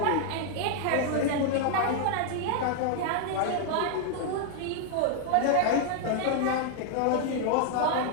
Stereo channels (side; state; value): both; different; correlation 0.00